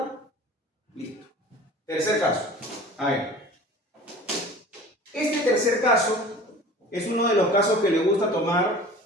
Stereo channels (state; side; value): normal; both; correlation 0.42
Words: Listo. Tercer caso. A ver. Este tercer caso es uno de los casos que le gusta tomar